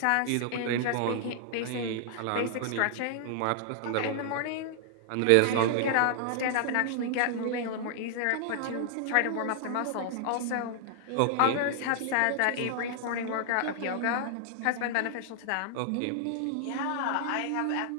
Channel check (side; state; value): both; different; correlation -0.01